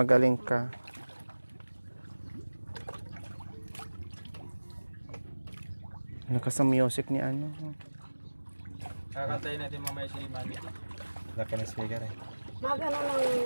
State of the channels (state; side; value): inverted; both; correlation -1.00